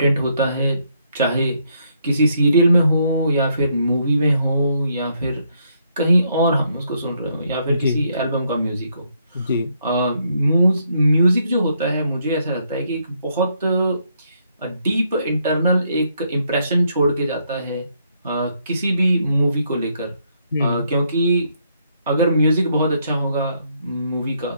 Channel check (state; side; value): inverted; both; correlation -0.73